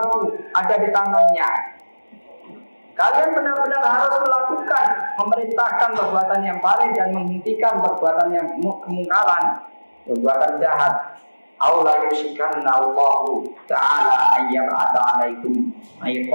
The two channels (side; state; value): both; inverted; correlation -1.00